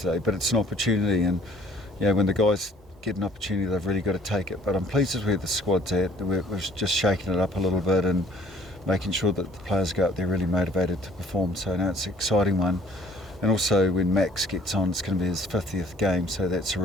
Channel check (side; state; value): both; normal; correlation 0.56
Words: But it's an opportunity, and when the guys get an opportunity, they've really got to take it. But I'm pleased with where the squad's at. We've just shaken it up a little bit and making sure that the players go out there really motivated to perform. So now it's an exciting one. And also when Max gets on, it's going to be his 50th game, so that's a